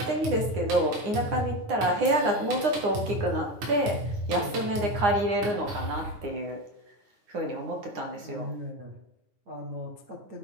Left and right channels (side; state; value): left; late; 9.7 ms